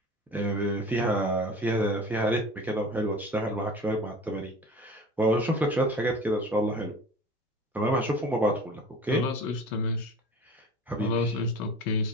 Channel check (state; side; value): normal; both; correlation 0.39